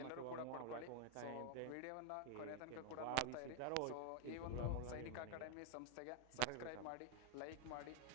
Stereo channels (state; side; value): different; both; correlation 0.00